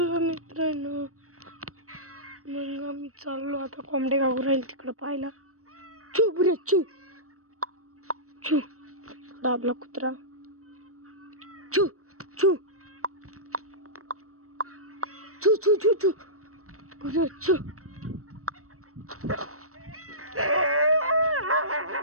मित्रांनो, मग आम्ही चाललो आता कोंबडे गाव राहील तिकडं पाहायला. चू बुरे चू चू आपला कुत्रा चू चू चू चू चू चू बुरे चू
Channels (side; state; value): left; late; 0.64 ms